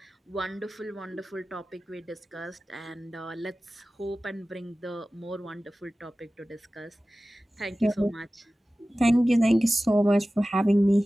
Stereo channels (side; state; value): both; normal; correlation 0.96